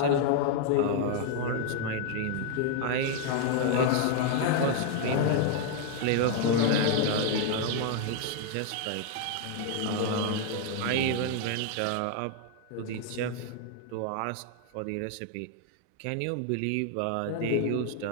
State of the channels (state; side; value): different; both; correlation 0.00